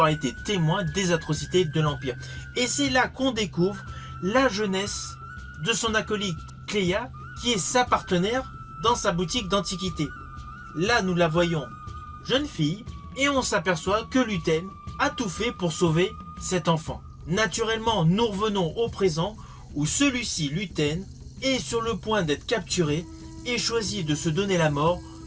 été témoin des atrocités de l'Empire. Et c'est là qu'on découvre la jeunesse de son acolyte Kleya, qui est sa partenaire dans sa boutique d'antiquités. Là, nous la voyons jeune fille et on s'aperçoit que Luthen a tout fait pour sauver cet enfant. Naturellement, nous revenons au présent où celui-ci, Luthen, est sur le point d'être capturé et choisit de se donner la mort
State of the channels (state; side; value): identical; both; correlation 1.00